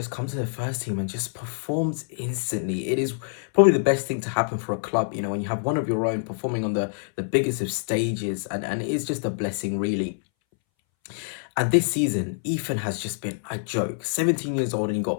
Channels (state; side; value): silent; right; 61 dB below the other